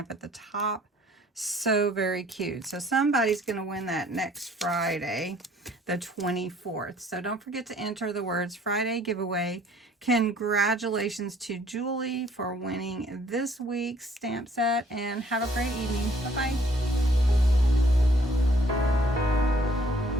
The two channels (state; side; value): normal; both; correlation 0.60